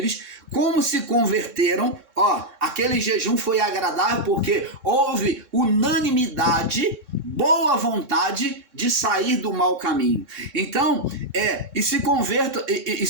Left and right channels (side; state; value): left; late; 3.6 ms